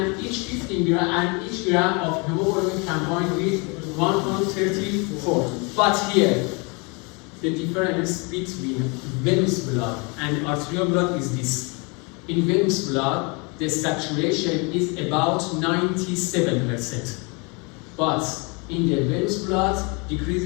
each gram of hemoglobin combined with 1.34. But here, the difference between venous blood and arterial blood is this. In venous blood, the saturation is about 97%. But in the venous blood,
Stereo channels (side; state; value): right; quieter; 31.1 dB